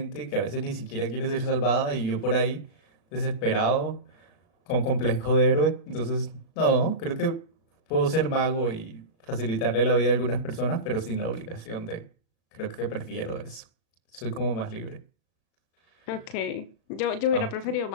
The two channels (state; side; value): late; right; 36 ms